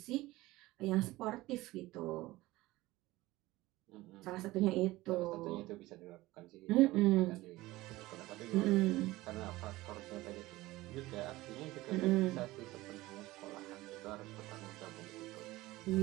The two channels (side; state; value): left; quieter; 18.7 dB